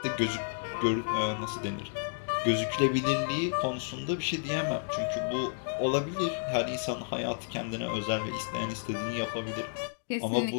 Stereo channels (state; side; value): silent; right; digital silence